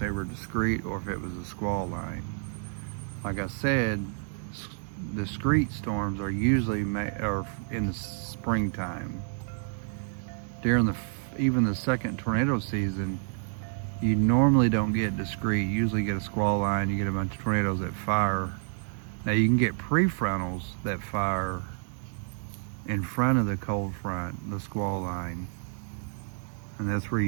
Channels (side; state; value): left; silent; digital silence